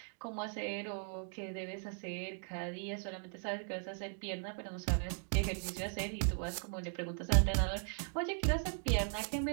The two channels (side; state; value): left; silent; 52 dB below the other